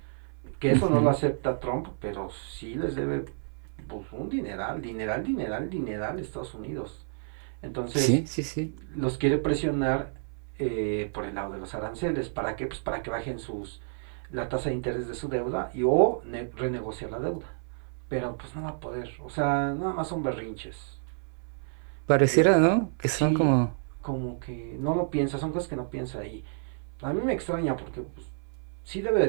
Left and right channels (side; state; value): left; silent; 58 dB below the other